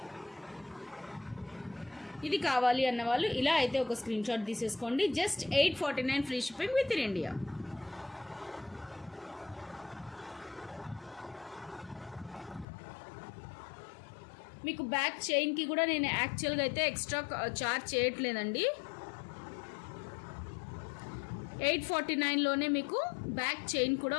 ఇది కావాలి అన్న వాళ్ళు ఇలా అయితే ఒక స్క్రీన్ షాట్ తీసేసుకోండి. Just 849 free shipping within India. మీకు బ్యాక్ చైన్కి కూడా నేను యాక్చువల్గా అయితే ఎక్స్ట్రా చార్జ్ చేయట్లేదండి. 849లోనే మీకు బ్యాక్ చైన్ కూడా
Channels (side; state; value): right; drops out; at 12.7 s